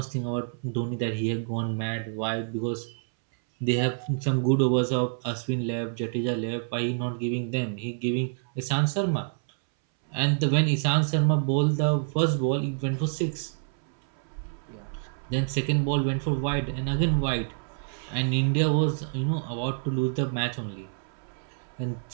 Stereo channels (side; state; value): left; silent; 60 dB below the other